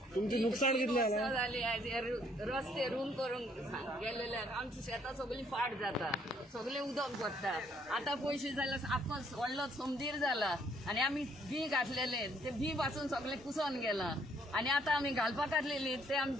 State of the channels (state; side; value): normal; both; correlation 0.66